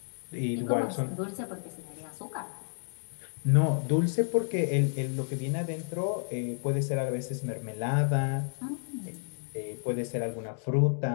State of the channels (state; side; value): silent; right; digital silence